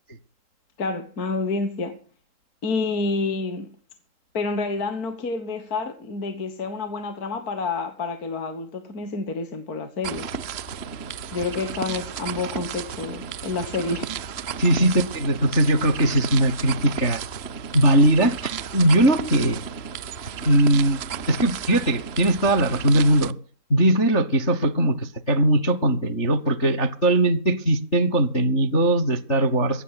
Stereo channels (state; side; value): late; right; 3.8 ms